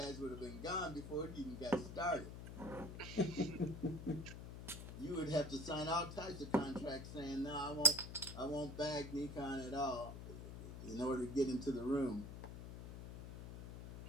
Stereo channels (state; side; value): noise; left; hum, 9 dB below the sound